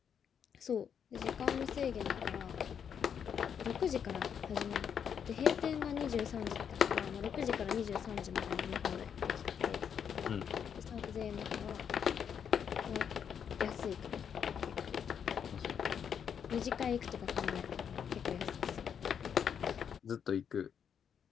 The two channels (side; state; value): right; quieter; 7.8 dB